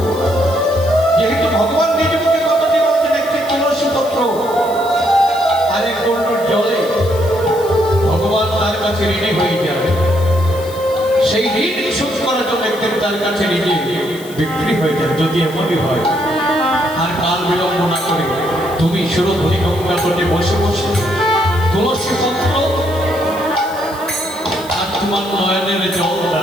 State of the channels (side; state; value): left; noise; hiss, 18 dB below the sound